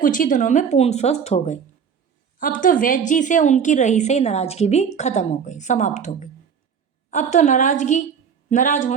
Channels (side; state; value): left; quieter; 7.0 dB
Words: ही दिनों में पूर्ण स्वस्थ हो गए। अब तो वैद्य जी से उनकी रही से नाराजगी भी खत्म हो गई, समाप्त हो गई। अब तो नाराज